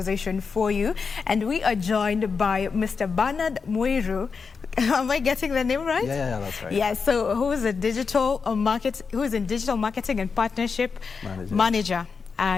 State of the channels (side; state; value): right; quieter; 5.3 dB